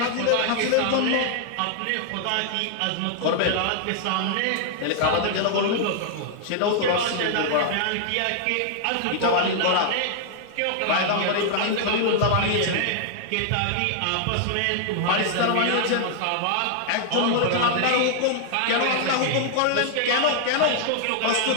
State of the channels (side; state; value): both; different; correlation 0.00